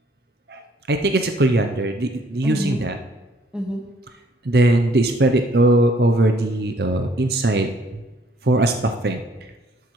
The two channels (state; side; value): normal; both; correlation 0.63